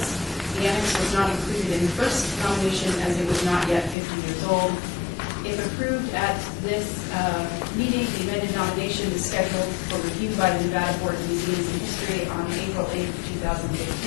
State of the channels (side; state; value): right; drops out; at 4.0 s